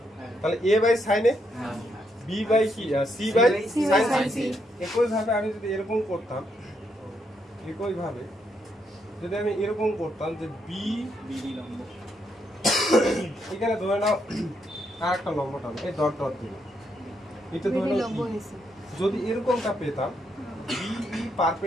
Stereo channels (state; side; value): normal; both; correlation 0.77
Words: তাহলে A by sine A B by কি সি বাই সাইন সি। একই ভাবে আমি যদি এরকম করতাম, যে বি লম্ব এখানে ধরে নাও আর একটা লম্ব টানো এই ডট ডট দিয়ে, এটা ধরে নাও যদি এরকমটা পেতাম B E